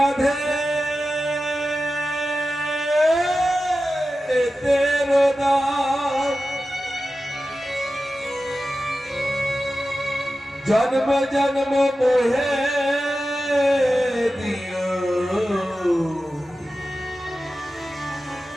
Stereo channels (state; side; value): normal; both; correlation 0.93